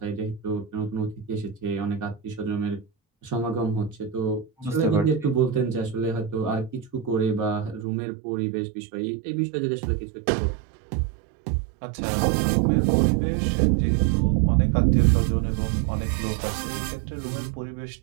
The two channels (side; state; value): left; drops out; at 7.9 s